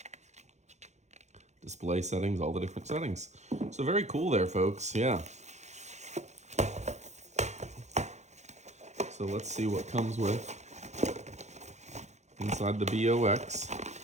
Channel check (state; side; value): late; left; 0.33 ms